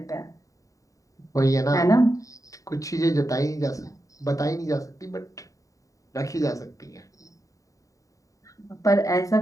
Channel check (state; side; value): late; right; 0.16 ms